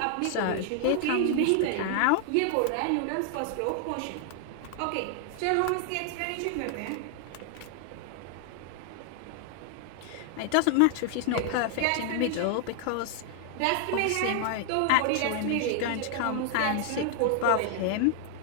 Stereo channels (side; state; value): both; different; correlation 0.00